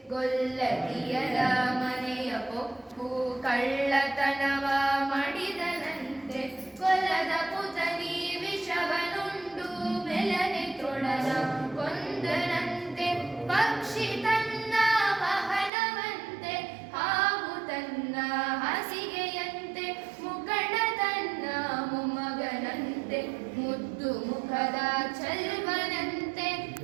ಗೊಲ್ಲತಿಯರ ಮನೆಯ ಪೊಕ್ಕು ಕಳ್ಳತನವ ಮಾಡಿದನಂತೆ ಕೊಲದ ಪುತನಿ ವಿಷವನುಂಡು ಮೆಲನೆ ತೃಣನ ಕೊಂದನಂತೆ ಪಕ್ಷಿ ತನ್ನ ವಾಹನವಂತೆ ಹಾವು ತನ್ನ ಹಾಸಿಗೆಯಂತೆ ಮುಖಂಡ ತನ್ನ ಮೊಮ್ಮಗನಂತೆ ಮುದ್ದು ಮುಖದ ಚಲ್ವನಂತೆ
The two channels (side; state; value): left; drops out; at 15.7 s